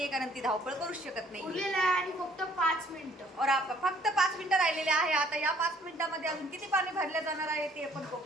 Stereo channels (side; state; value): both; normal; correlation 0.60